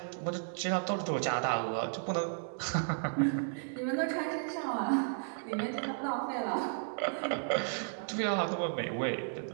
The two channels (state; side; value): silent; left; digital silence